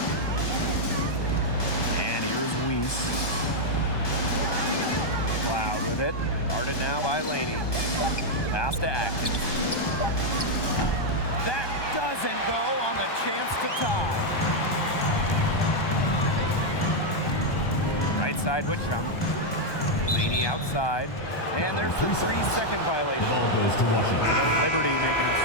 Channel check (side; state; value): right; late; 1.2 ms